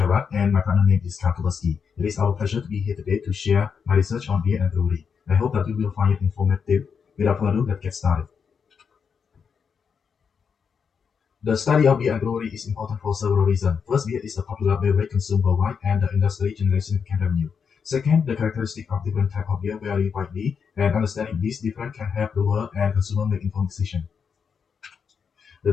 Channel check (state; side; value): quieter; right; 6.4 dB